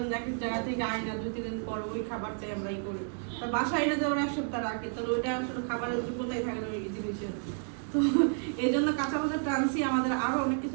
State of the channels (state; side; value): silent; left; 57 dB below the other